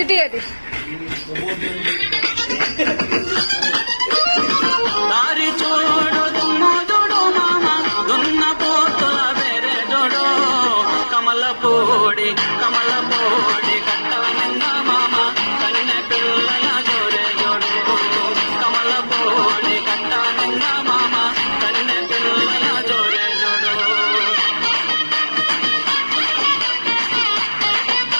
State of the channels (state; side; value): inverted; both; correlation -1.00